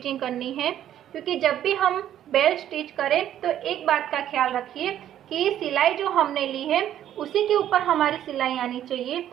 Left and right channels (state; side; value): quieter; left; 11.3 dB